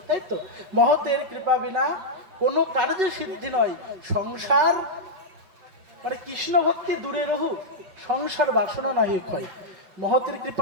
তাই তো? মহতের কৃপা বিনা কোনো কার্যে সিদ্ধি নয়। সংসার মানে কৃষ্ণ ভক্তি দূরে রহু, সংসার বাসনা না হয়। মহতের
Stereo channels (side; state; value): left; late; 5.4 ms